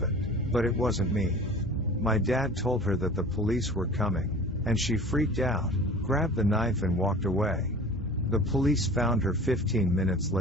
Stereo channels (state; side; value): normal; both; correlation 0.41